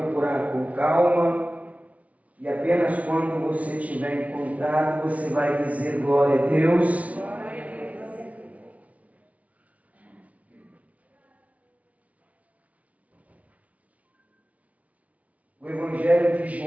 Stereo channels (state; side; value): late; left; 0.067 ms